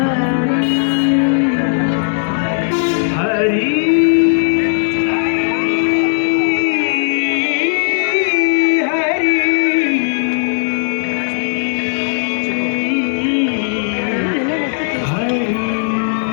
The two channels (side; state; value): right; silent; digital silence